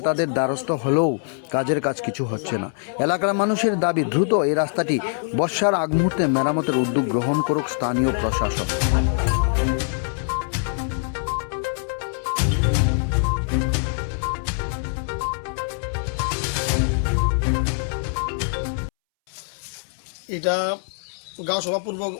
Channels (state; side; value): silent; right; 63 dB below the other